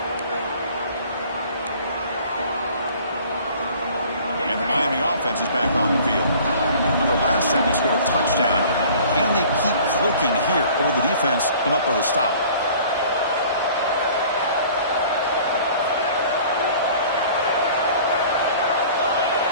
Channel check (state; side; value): inverted; both; correlation -0.49